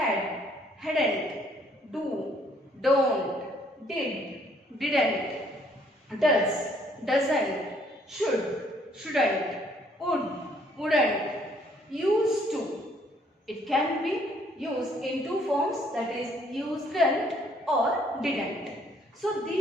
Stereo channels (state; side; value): normal; both; correlation 0.65